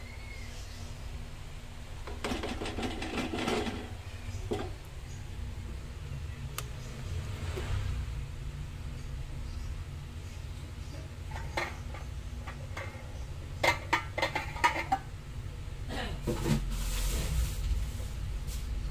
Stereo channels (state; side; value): identical; both; correlation 1.00